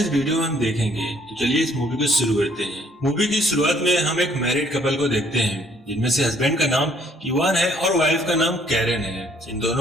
इस वीडियो में हम देखेंगे। तो चलिए इस मूवी को शुरू करते हैं। मूवी की शुरुआत में हम एक मैरिड कपल को देखते हैं जिनमें से हस्बैंड का नाम इवान है और वाइफ का नाम कैरेन है। इन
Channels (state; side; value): normal; both; correlation 0.63